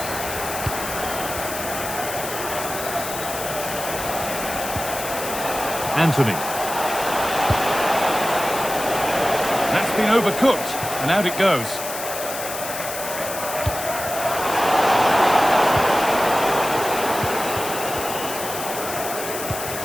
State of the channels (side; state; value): left; noise; hiss, 7 dB below the sound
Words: Anthony. That's been overcooked, and out it goes.